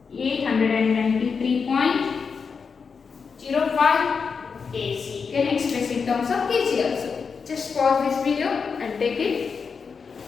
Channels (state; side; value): quieter; right; 5.6 dB